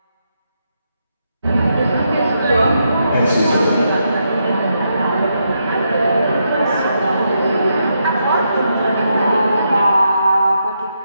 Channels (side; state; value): both; inverted; correlation -0.81